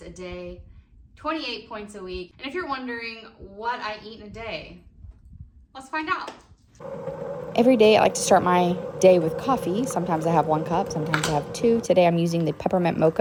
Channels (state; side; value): identical; both; correlation 1.00